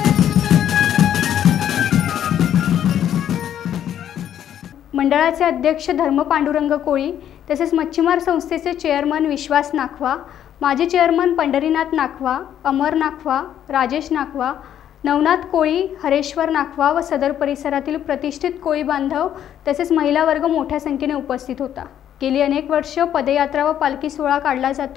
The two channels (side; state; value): right; quieter; 10.3 dB